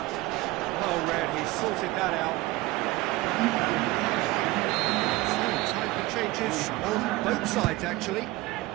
Oh, Red, he sorted that out. So, time for changes on both sides, actually.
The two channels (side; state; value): left; quieter; 19.5 dB